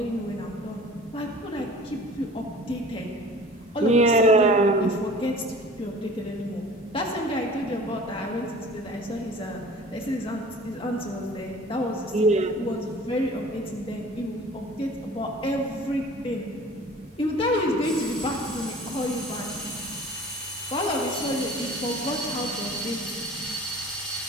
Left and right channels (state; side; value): normal; both; correlation 0.44